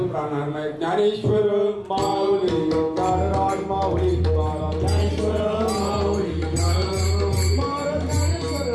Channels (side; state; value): both; identical; correlation 1.00